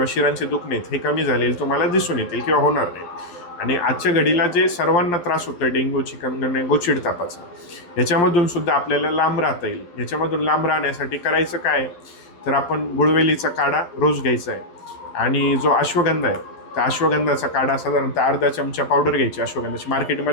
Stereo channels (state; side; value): late; right; 12 ms